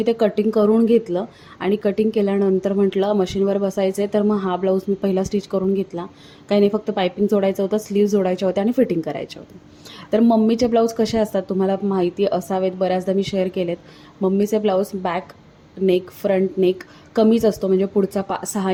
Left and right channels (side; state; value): both; identical; correlation 1.00